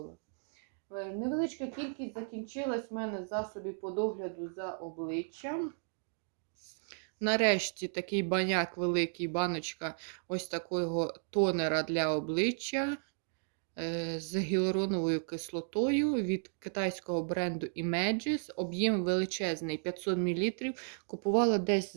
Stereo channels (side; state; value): left; silent; digital silence